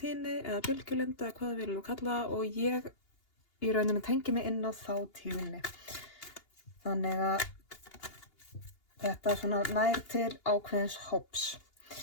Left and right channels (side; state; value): right; late; 2.8 ms